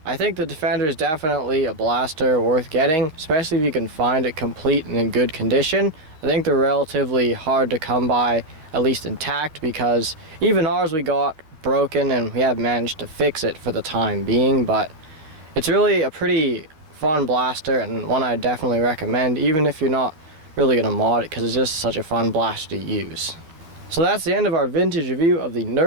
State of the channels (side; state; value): left; late; 13 ms